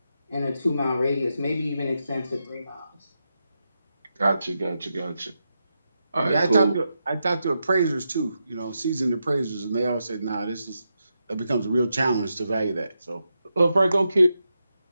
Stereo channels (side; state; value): both; inverted; correlation -0.86